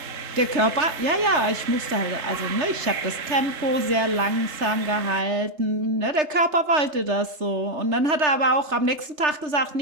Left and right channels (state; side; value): late; left; 3.3 ms